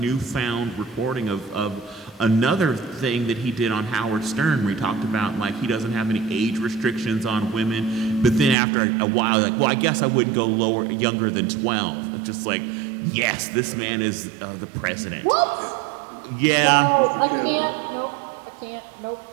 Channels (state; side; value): drops out; left; at 8.6 s